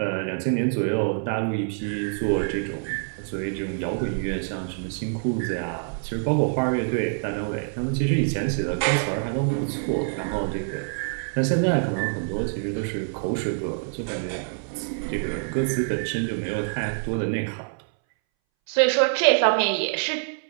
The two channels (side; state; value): left; silent; 61 dB below the other